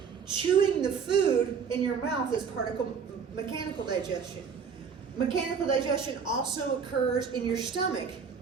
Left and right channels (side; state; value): left; quieter; 6.3 dB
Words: chewing the food in your mouth is part of mechanical digestion. Mechanical digestion also occurs in your stomach.